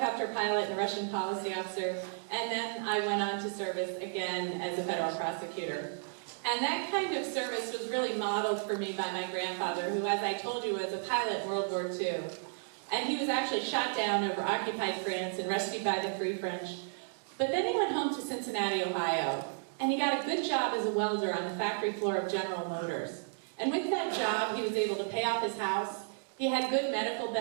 pilot and a Russian policy officer, and then I went on to service again as a federal prosecutor. And that kind of service was really modeled for me by my grandfather, who, as I told you, was a pilot in World War II. And he was actually shot down over occupied France and rescued by the Free French. But then he went home to Cincinnati, Ohio, and he got a good job as a welder on the factory floor of General Motors. And with that job, he was able to pay off his house. He had good medical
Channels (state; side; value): silent; left; digital silence